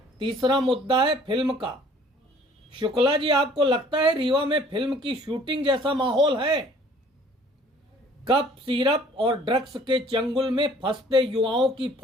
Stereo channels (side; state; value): both; normal; correlation 0.55